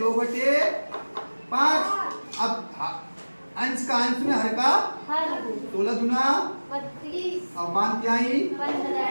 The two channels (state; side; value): inverted; both; correlation -1.00